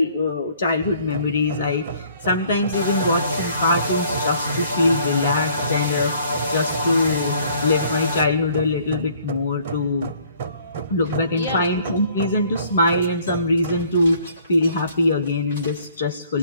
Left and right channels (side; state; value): both; inverted; correlation -0.59